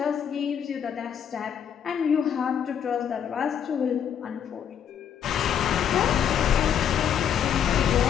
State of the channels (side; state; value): right; quieter; 8.6 dB